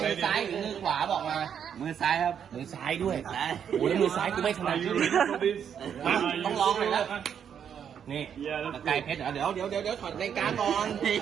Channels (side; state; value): left; quieter; 8.2 dB